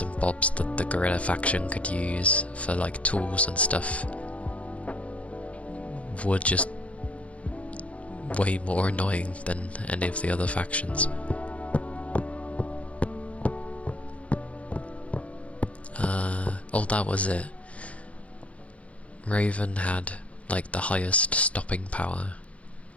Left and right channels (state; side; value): late; right; 0.064 ms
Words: and bobs that the gorilla faction could use for like tools and stuff were just way more annoying than any of the other factions. Oh, that was it. Raven had like the highest stopping power.